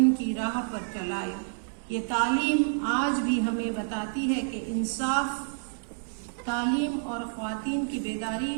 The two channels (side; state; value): left; silent; digital silence